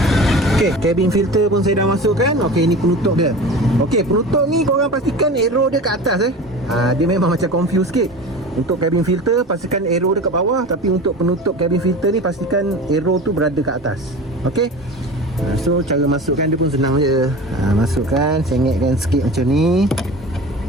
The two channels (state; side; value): normal; both; correlation 0.34